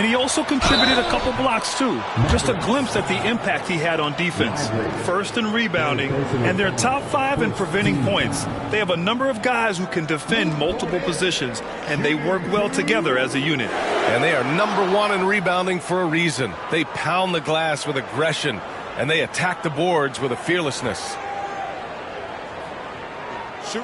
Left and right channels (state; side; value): identical; both; correlation 1.00